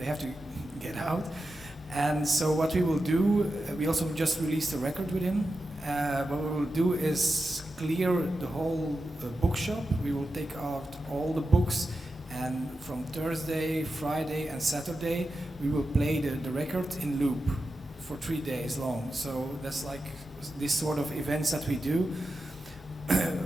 have to get out. And so what we will do, we also just released a record with him. What we will do is clear the whole bookshop. We will take out all the books, and from Thursday, Friday and Saturday we will play the record in loop for 3 days long. So that's like this sort of events that we do.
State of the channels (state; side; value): normal; both; correlation 0.90